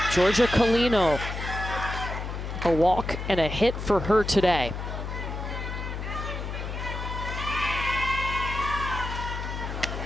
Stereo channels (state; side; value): noise; left; hum, 5 dB below the sound